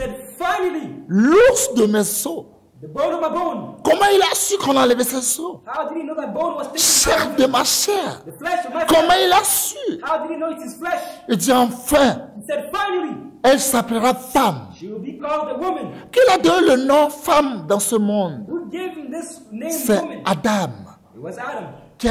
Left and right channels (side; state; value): both; identical; correlation 1.00